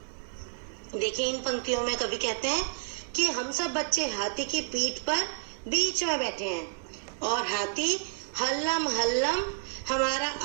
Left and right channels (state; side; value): silent; left; digital silence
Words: देखिए इन पंक्तियों में कवि कहते हैं कि हम सब बच्चे हाथी की पीठ पर बीच में बैठे हैं और हाथी हल्लम हल्लम हमारा